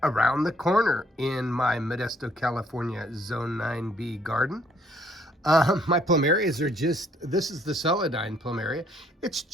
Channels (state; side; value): normal; both; correlation 0.65